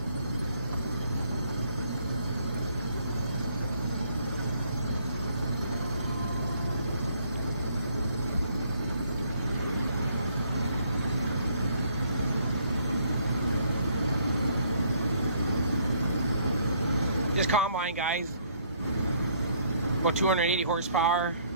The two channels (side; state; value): both; inverted; correlation -0.66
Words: This combine, guys, about 280 horsepower.